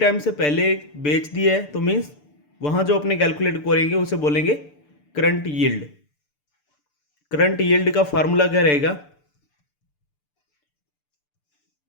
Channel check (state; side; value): late; right; 6.8 ms